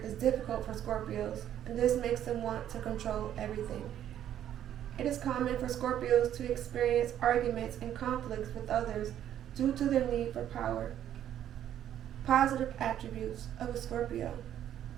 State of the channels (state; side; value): quieter; left; 10.8 dB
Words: is difficult for Scorpios, and this makes them want to control everything. It is common for Scorpios to experience arguments and conflicts with others due to their need for power. Positive attributes of a Scorpio.